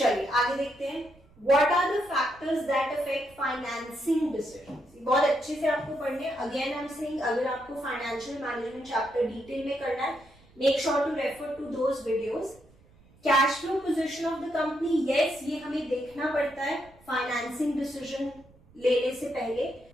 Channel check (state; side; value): noise; right; rumble, 28 dB below the sound